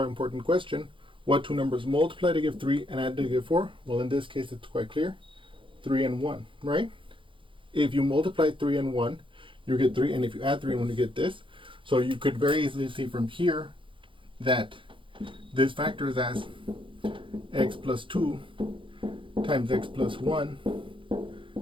important question: what two numbers multiply to give 3 and add to give 4? Well, in this case, it's quite clear: 3 and 1, right? If you multiply 3 and 1, you get 3, and if you add 3 and 1, you get this. So you could very easily see from here that this factors as x plus 2 times x plus 1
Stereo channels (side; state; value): left; late; 0.25 ms